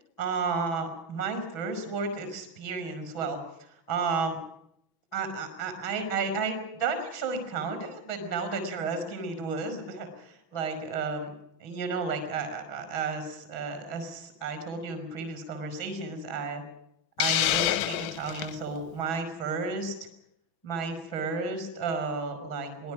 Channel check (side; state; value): right; late; 6.4 ms